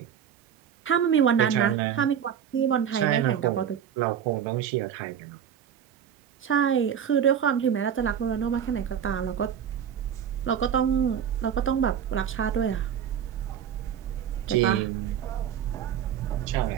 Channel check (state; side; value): quieter; left; 8.7 dB